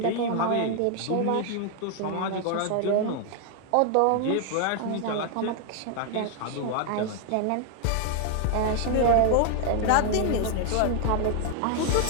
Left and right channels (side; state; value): both; different; correlation 0.00